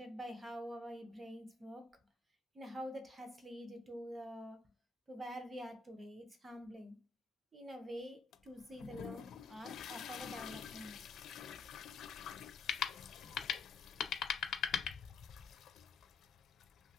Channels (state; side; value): quieter; right; 4.5 dB